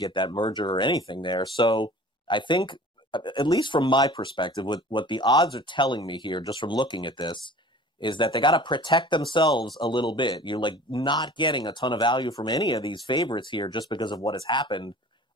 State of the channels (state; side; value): normal; both; correlation 0.45